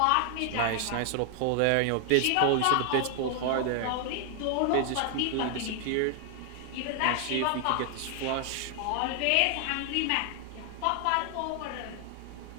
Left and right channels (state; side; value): different; both; correlation 0.00